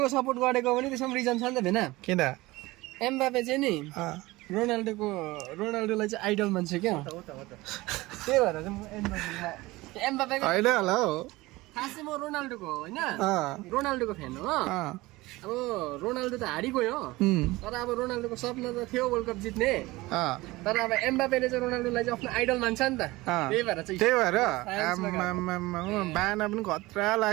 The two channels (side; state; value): left; quieter; 20.3 dB